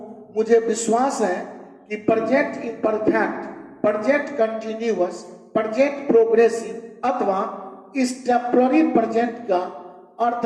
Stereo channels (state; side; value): identical; both; correlation 1.00